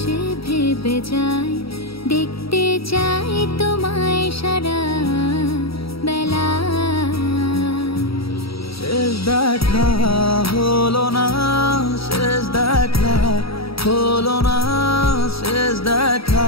ভেবে যায়, দেখতে চাই তোমায় সারা বেলা। শেষ দেখা হলো না, শেষ দেখা হলো না, শেষ দেখা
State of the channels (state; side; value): late; right; 0.76 ms